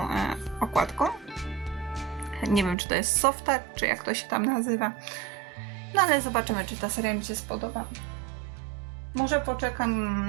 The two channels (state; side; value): drops out; left; at 2.8 s